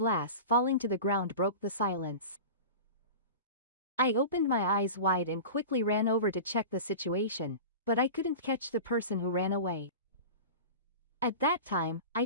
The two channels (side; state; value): both; inverted; correlation -0.32